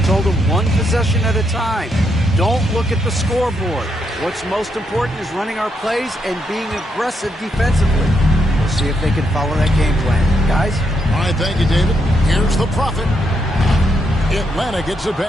told them 1 possession at a time. Don't look at the scoreboard. What's most important is running our plays and being aggressive defensively. We'll see if they can follow that game plan. Guys? All right, thank you, David. Here's the Prophet. Atlanta gets it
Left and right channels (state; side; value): normal; both; correlation 0.79